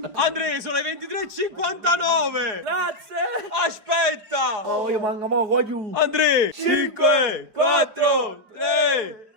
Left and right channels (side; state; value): left; late; 4.9 ms